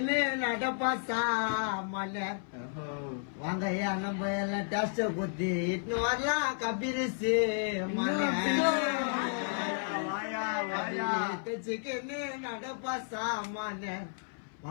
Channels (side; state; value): right; silent; 56 dB below the other